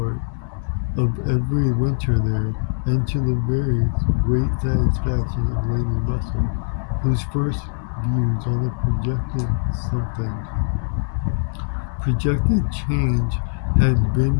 of every winter there, and to the very great satisfaction of Lady Russell, whose first views on the something projected change had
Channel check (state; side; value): silent; right; 63 dB below the other